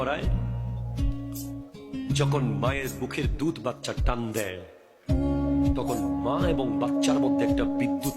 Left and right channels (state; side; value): identical; both; correlation 1.00